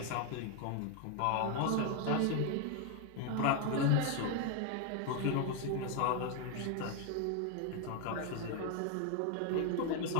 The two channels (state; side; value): different; both; correlation 0.01